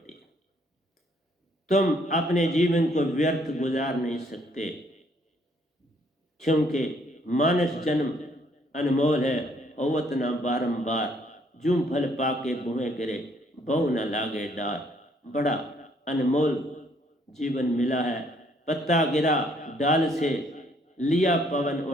है। तुम अपने जीवन को व्यर्थ गुजार नहीं सकते, क्योंकि मानस जन्म अनमोल है। अवत ना बारंबार, जूं फल पाके बुहे गिरे, बहु न लागे डार। बड़ा अनमोल जीवन मिला है। पत्ता गिरा डाल से, लिया पवन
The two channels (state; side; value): normal; both; correlation 0.66